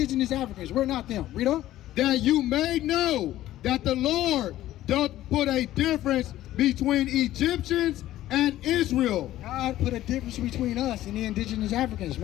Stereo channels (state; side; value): quieter; right; 14.3 dB